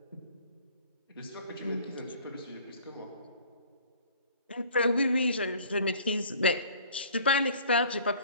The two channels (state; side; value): inverted; both; correlation -0.51